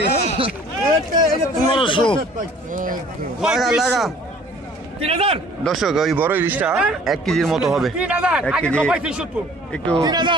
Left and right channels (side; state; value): both; normal; correlation 0.52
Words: 1500 লাগা। দর্শক, ওই বড় ইলিশটা 1 কেজির মতো হবে। 1 কেজি একটু